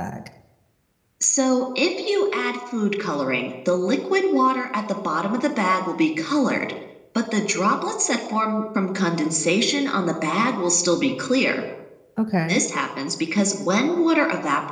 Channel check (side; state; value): both; identical; correlation 1.00